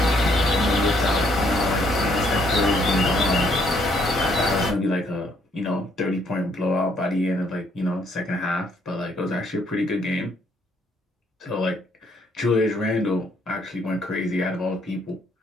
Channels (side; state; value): both; normal; correlation 0.68